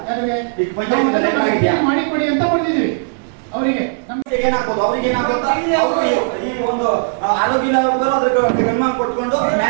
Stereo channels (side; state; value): left; silent; 63 dB below the other